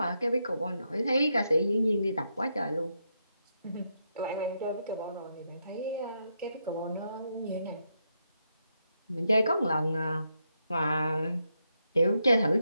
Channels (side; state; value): both; inverted; correlation -0.81